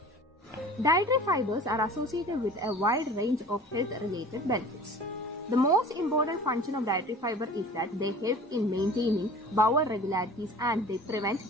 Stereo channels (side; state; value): both; normal; correlation 0.43